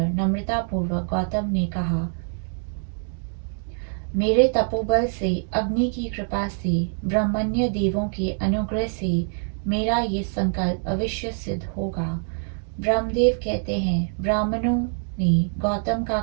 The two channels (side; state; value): left; silent; 55 dB below the other